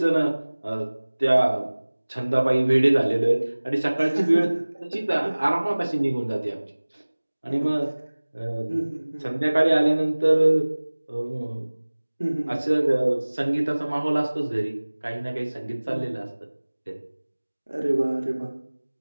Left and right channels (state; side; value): inverted; both; correlation -1.00